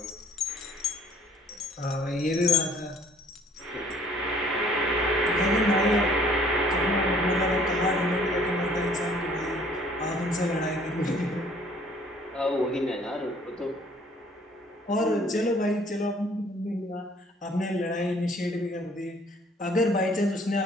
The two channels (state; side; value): normal; both; correlation 0.57